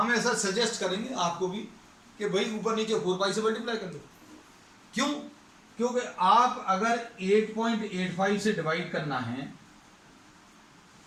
ऐसा सजेस्ट करेंगे आपको भी कि भाई ऊपर नीचे 4 पाई से मल्टीप्लाई कर दो। क्यों? क्योंकि आप अगर 8.85 से डिवाइड करना है,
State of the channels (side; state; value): both; identical; correlation 1.00